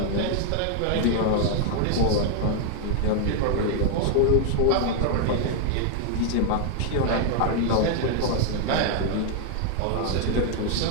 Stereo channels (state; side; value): different; both; correlation 0.00